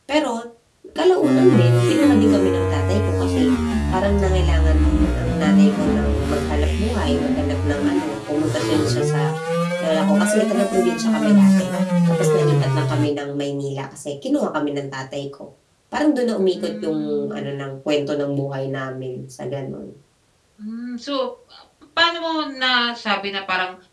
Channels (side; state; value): both; identical; correlation 1.00